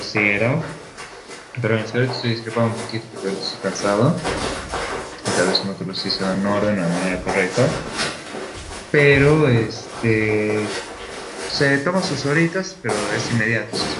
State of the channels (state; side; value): identical; both; correlation 1.00